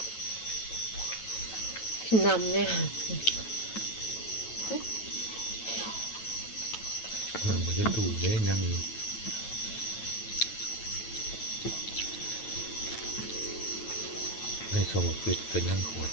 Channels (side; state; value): right; late; 9.1 ms